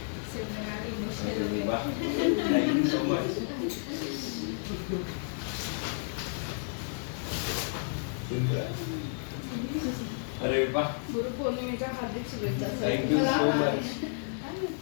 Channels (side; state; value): right; silent; digital silence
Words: Thank you so much. Simran. अरे वाह. गुरुपौर्णिमेच्या हार्दिक शुभेच्छा. Thank you so much.